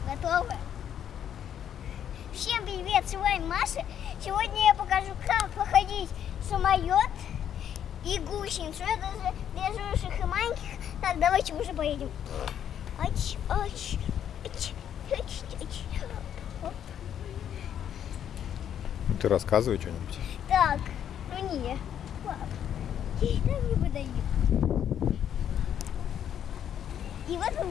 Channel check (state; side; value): quieter; right; 9.5 dB